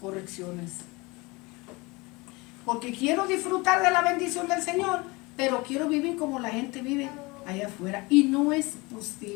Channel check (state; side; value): quieter; right; 24.7 dB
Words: Porque quiero disfrutar de la bendición del Señor, pero quiero vivir como la gente vive allá afuera. Y no es